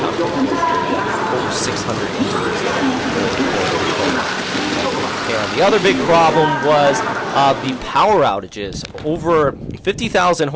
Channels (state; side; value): identical; both; correlation 1.00